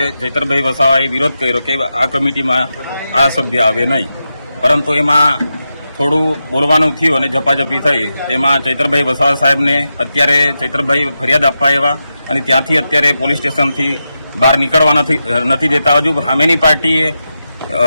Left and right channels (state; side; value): inverted; both; correlation -0.89